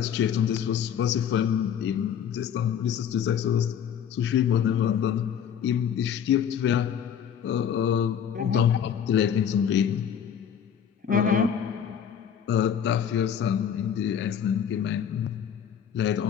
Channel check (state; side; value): quieter; right; 8.5 dB